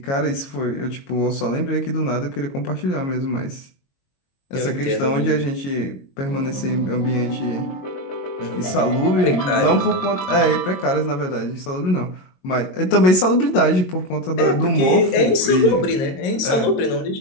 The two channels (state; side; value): late; right; 22 ms